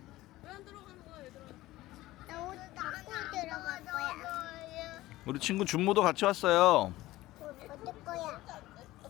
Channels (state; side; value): quieter; right; 17.1 dB